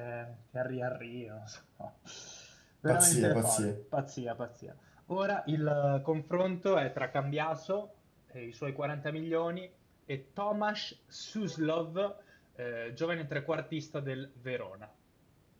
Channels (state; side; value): identical; both; correlation 1.00